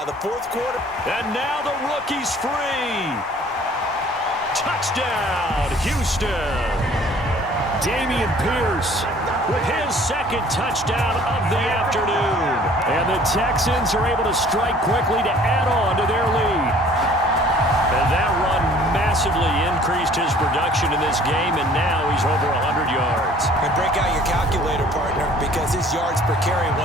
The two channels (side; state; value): both; normal; correlation 0.53